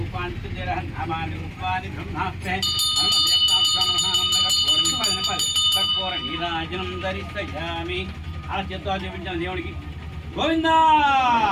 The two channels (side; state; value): both; identical; correlation 1.00